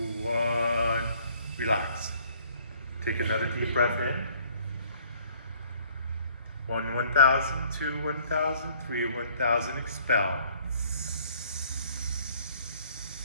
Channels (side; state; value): both; inverted; correlation -0.59